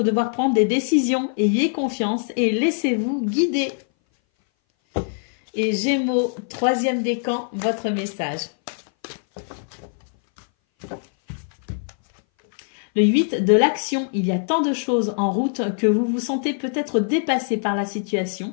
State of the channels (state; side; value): silent; right; 60 dB below the other